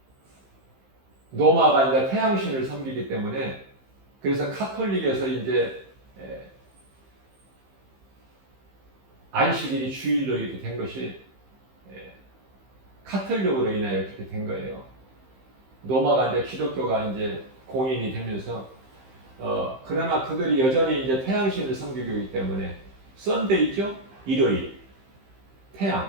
로마가 이제 태양신을 섬기기 때문에 그래서 카톨릭에서 이제 안식일이 주일로 이렇게 된 것이 카톨릭으로 인하여 그렇게 된 거예요. 로마가 이제 기독교가 이제 공인이 되면서 그러나 그들이 여전히 이제 태양신을 섬기고 있기 때문에 썬데이죠? 일요일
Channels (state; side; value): late; left; 15 ms